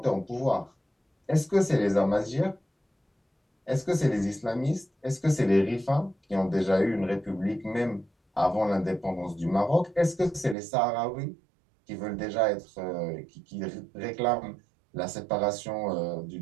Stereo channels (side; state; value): left; drops out; at 10.6 s